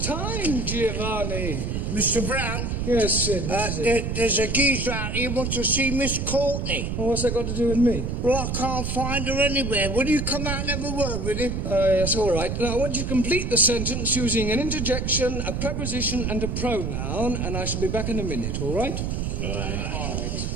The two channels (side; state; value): right; noise; rumble, 2 dB below the sound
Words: time, Giovanni. Mr. Brown? Yes, Sid. What is it? There's a geezer out here who wants to see Miss Courtney. Well, what's that got to do with me? Well, I can't find her anywhere. Will you come out and have a word with him? Yes, all right. Now, I want you to complete the sentence using an interjection, a preposition, and a pronoun, and I shall be back in a minute, all right? All right.